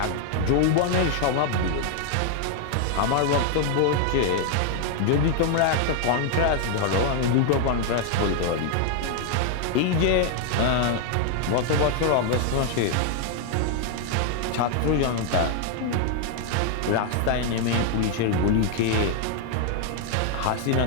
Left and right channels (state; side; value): different; both; correlation 0.00